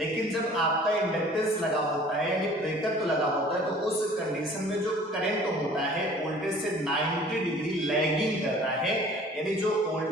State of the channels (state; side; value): normal; both; correlation 0.50